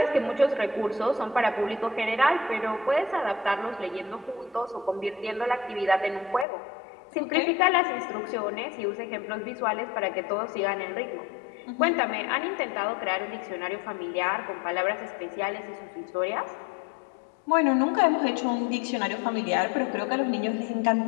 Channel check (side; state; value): right; drops out; at 6.5 s